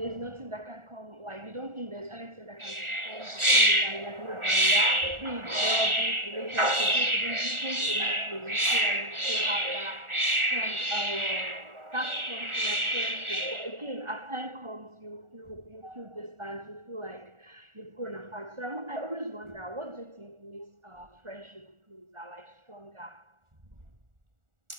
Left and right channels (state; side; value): late; left; 1.4 ms